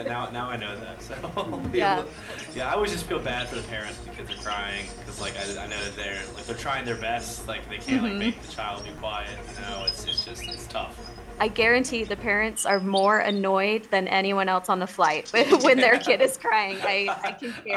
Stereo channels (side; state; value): both; identical; correlation 1.00